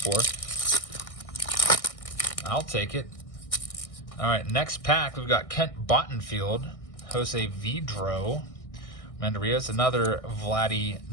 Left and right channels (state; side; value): late; right; 1.6 ms